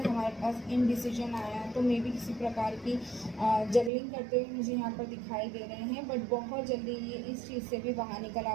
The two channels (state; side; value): drops out; left; at 3.9 s